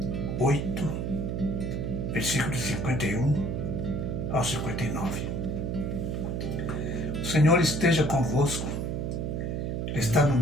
8, versículos 51 ao 59. O Senhor esteja convosco, Ele está no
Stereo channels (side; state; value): right; noise; hum, 2 dB below the sound